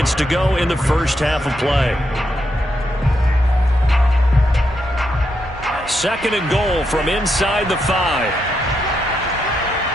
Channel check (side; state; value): both; normal; correlation 0.81